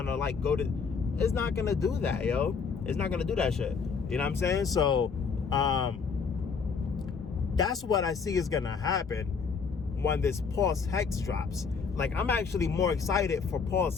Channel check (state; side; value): quieter; right; 5.6 dB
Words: like go to. It's not gonna do that, yo. It's not gonna do that shit. You know what I'm saying? So that's what I see is gonna happen when this Pulse Hex drops. Like, I'm actually more excited for Pulse